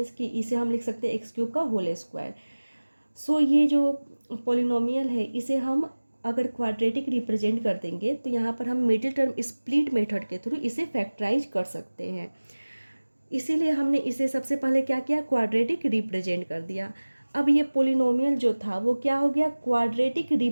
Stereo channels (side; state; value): both; inverted; correlation -1.00